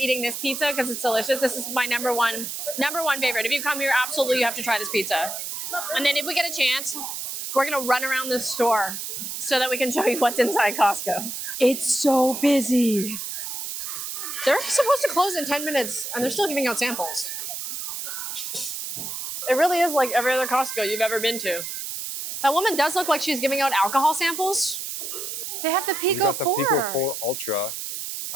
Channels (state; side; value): noise; right; hiss, 6 dB below the sound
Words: this pizza because it's delicious. This is my number one favorite. If you come here, absolutely you have to try this pizza. And then if we get a chance, we're gonna run around the store so that we can show you what's inside Costco. It's so busy. They're supposed to close in 10 minutes and they're still giving out samples. It really is like every other Costco you've ever been to. That woman does look like she's giving out alcohol samples. They have the Pico 4. You got the Pico 4 Ultra.